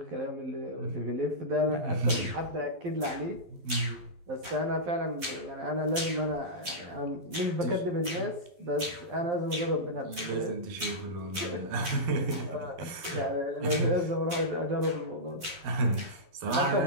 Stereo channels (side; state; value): left; late; 12 ms